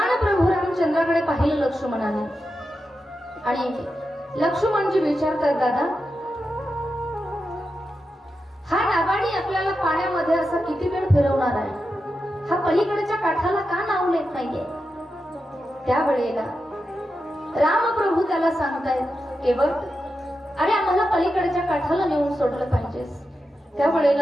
प्रभू रामचंद्राकडे पाहिलं लक्ष्मणाने आणि लक्ष्मणजी विचारतात, दादा हा नावाडी आपल्याला पाण्यामध्ये असा किती वेळ फिरवणार आहे, हा पलीकडच्या काठाला का नाव लेत नाहीये? त्या वेळेला रामप्रभू त्याला सांगतायत, केवळ अरे आम्हाला पलीकडच्या काठाला नेऊन सोडलं पाहिजेस. त्या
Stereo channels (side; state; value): both; normal; correlation 0.89